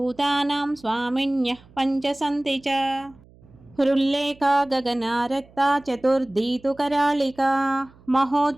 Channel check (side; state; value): right; noise; hum, 26 dB below the sound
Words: स्वामिन्यः पञ्च सन्ति च हृल्लेखा गगनारक्ता चतुर्थी तु करालिका